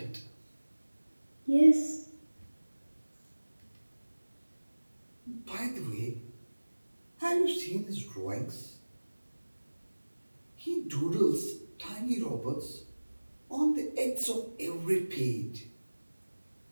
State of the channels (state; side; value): inverted; both; correlation -1.00